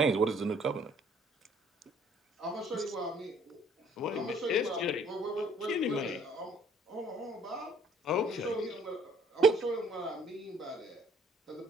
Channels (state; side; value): normal; both; correlation 0.59